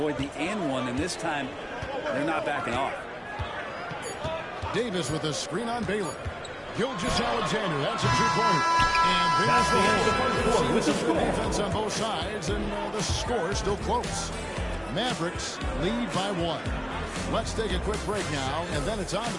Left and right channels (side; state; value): both; identical; correlation 1.00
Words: the and one, and this time they're not backing off. Davis with a screen on Baylor. Gilgeous-Alexander, that's a two-pointer. And there's the hole. With the defense on both sides, and the score is still close. Mavericks lead by 1. Let's take a quick break now, and then it's on to